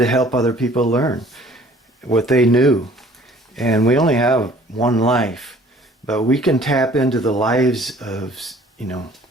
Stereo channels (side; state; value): both; normal; correlation 0.54